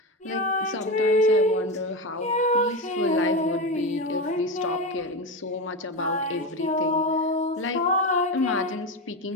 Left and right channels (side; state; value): both; normal; correlation 0.17